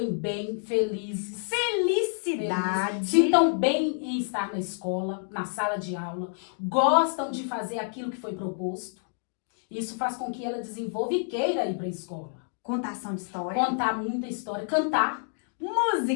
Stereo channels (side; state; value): right; silent; digital silence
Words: bem, felizes. Felicidade. Sintam bem em estar na escola, na sala de aula. Gostam de fazer aquilo que foi proposto. Isso faz com que ela desenvolva e queira ir para a escola. Contação de história. Contar muita história, cantar.